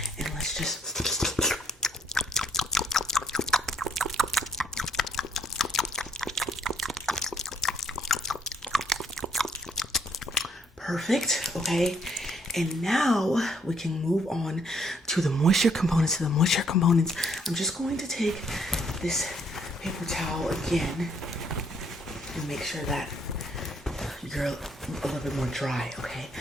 and let's just perfect. Okay, and now we can move on to the moisture components. I'm just going to take this paper towel again, and make sure that you're a little bit more dry, okay?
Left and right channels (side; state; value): both; normal; correlation 0.67